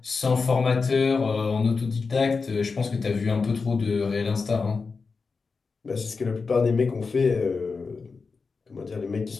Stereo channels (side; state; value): right; quieter; 4.7 dB